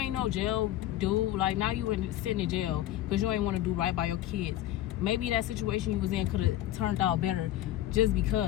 jail dude. Like, now you sitting in jail because you ain't want to do right by your kids. Maybe that situation you was in could have turned out better, just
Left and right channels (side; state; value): right; quieter; 13.6 dB